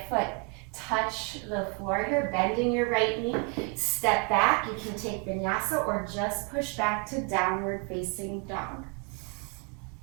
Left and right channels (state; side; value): quieter; left; 31.8 dB